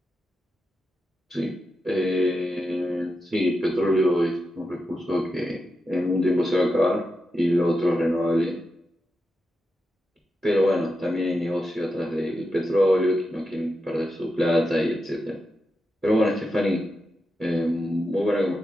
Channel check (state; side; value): normal; both; correlation 0.88